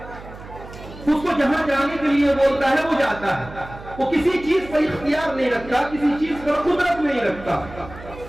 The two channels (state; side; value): noise; right; hum, 16 dB below the sound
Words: اس کو جہاں جانے کے لیے بولتا ہے وہ جاتا ہے۔ وہ کسی چیز پر اختیار نہیں رکھتا، کسی چیز پر قدرت نہیں رکھتا۔